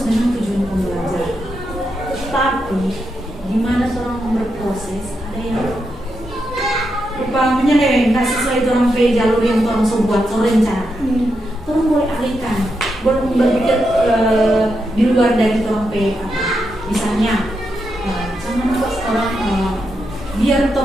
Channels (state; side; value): normal; both; correlation 0.84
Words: dengan tujuan pembelajaran. Tapi gimana orang berproses, ada yang rupanya nggak sesuai orang jalur yang orang buat rencana. Orang boleh alihkan, boleh berpikir di luar dari orang misalnya jangan pas orang biar